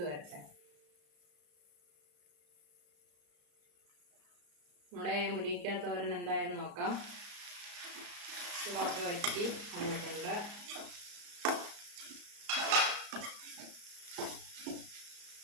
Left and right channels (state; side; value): late; left; 34 ms